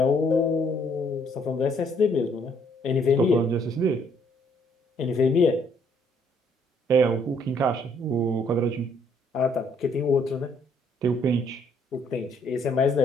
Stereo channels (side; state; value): both; normal; correlation 0.66